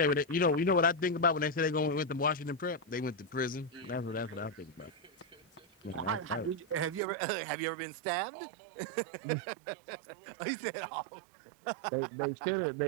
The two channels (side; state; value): left; drops out; at 7.0 s